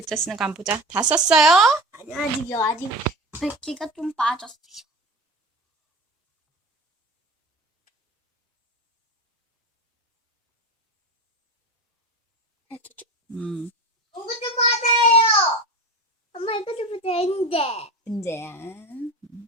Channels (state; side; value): normal; both; correlation 0.30